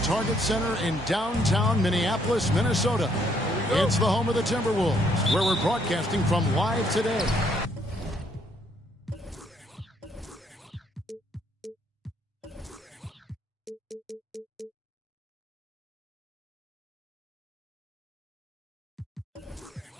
Center in downtown Minneapolis, Minnesota. It's the home of the Timberwolves, where we're broadcasting from live today.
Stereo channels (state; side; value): normal; both; correlation 0.69